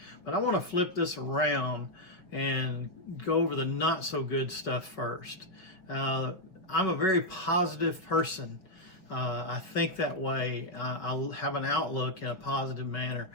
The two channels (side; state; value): right; late; 5.7 ms